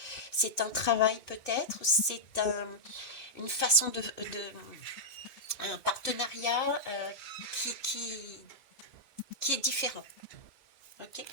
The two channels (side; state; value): right; late; 2.3 ms